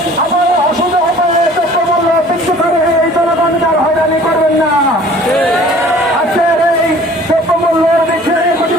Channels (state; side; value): normal; both; correlation 0.50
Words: আপনারা অসুবিধা হবে দ্রব্যমূল্য বৃদ্ধি করে এই জনগণকে আর হয়রানি করবেন না। আজকের এই দ্রব্যমূল্যের বৃদ্ধির